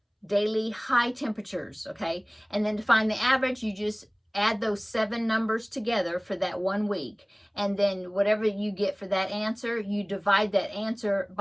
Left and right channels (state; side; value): identical; both; correlation 1.00